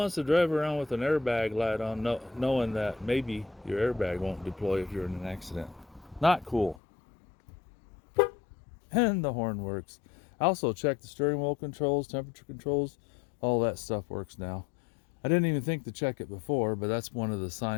to drive around with an airbag light on knowing that maybe your airbag won't deploy if you're in an accident? Not cool. And the horn works. I also checked the steering wheel controls, temperature controls, all that stuff works now. I didn't even think to check it before, but that's one of the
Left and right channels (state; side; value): drops out; right; at 6.8 s